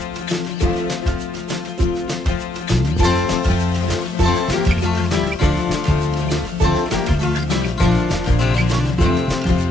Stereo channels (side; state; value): both; normal; correlation 0.75